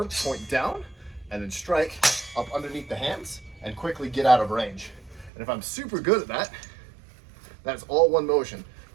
point down, and then strike up underneath the hands and quickly get out of range. And if I'm super good at that, that's all one motion.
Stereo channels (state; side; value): drops out; left; at 5.3 s